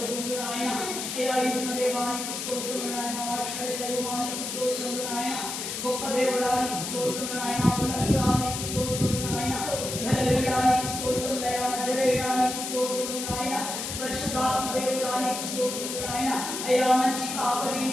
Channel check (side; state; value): left; noise; hiss, 5 dB below the sound